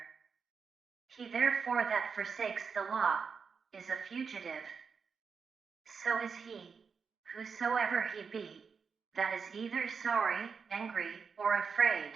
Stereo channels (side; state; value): left; quieter; 5.7 dB